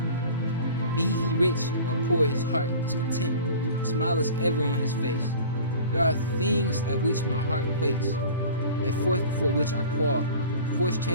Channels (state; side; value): inverted; both; correlation -0.41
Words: Be he rich or poor, his heart is content. A smile is ever on his face. There are things at which my heart quakes, a fourth before which I qual. Forced